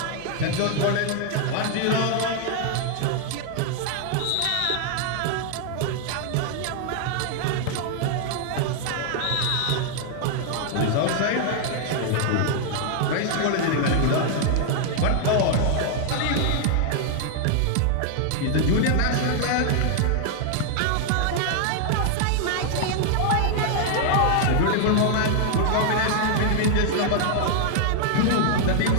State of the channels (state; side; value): different; both; correlation 0.00